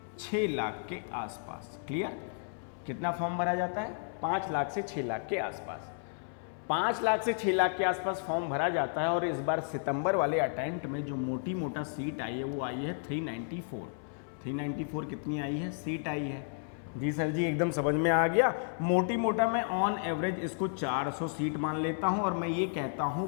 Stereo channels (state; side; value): silent; right; 56 dB below the other